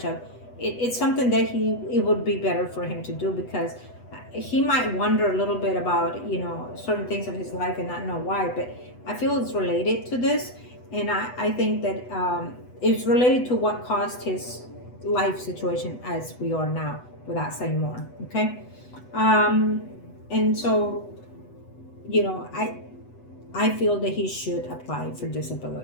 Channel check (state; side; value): late; right; 8.1 ms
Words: of. It's something that it would be better for him to do, because he might wonder a little bit about certain things of his life and not know why. But I feel it's related to this, and I think that it's related to what caused his life situation as we are now, without saying more. Okay. And so I feel that he should apply for